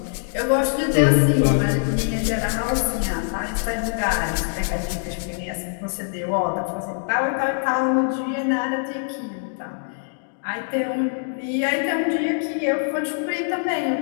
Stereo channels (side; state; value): right; silent; digital silence